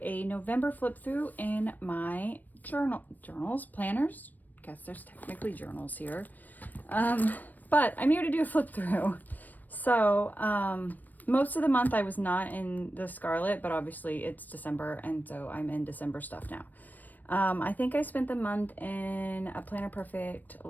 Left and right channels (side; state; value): right; late; 0.086 ms